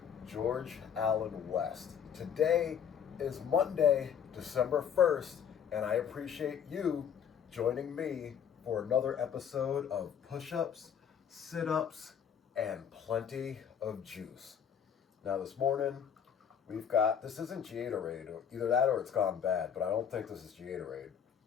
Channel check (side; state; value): right; quieter; 8.0 dB